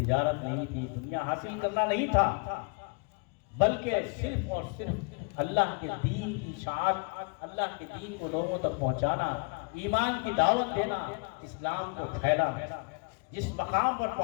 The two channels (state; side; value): quieter; right; 33.6 dB